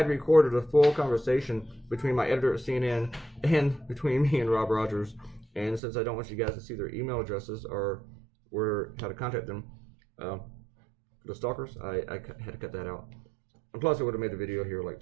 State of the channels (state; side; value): drops out; left; at 5.8 s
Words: recorded a full conversation between my editor at CNN and between me and Rob Rogers. And since I don't want you guys to see their email addresses or how to contact them, the stalkers, I had to cut that out. And plus, it would have made the video here like